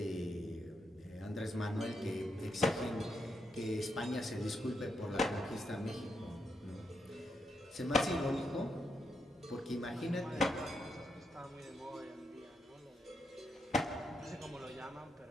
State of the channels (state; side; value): normal; both; correlation 0.81